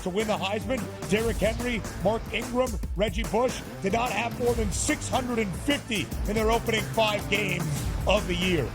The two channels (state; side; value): identical; both; correlation 1.00